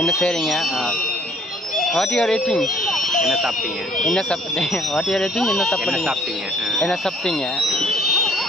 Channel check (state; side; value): normal; both; correlation 0.60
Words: என்ன செய்கிறீங்க? What you are eating? என்ன சாப்பிட்டீங்க? என்ன சாப்பிட்டீங்க? What you are eating? என்ன என்ன சாப்பிட்டீங்க? சாப்பிட்டீங்க? என்ன சாப்பிட்டீங்க?